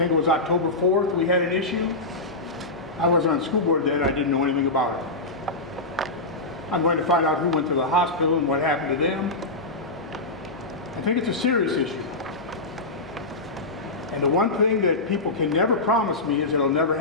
it was October 4th we had an issue. I wasn't on the school board then, I didn't know anything about it. I'm going to find out who went to the hospital and what happened to them. I think it's a serious issue. And the one thing that people can never promise me is it'll never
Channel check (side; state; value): right; quieter; 3.0 dB